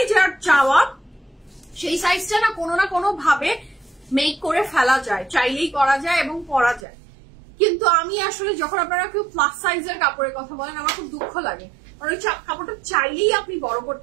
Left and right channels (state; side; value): drops out; left; at 6.9 s